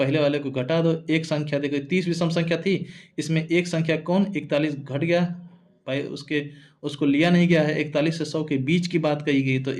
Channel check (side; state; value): both; identical; correlation 1.00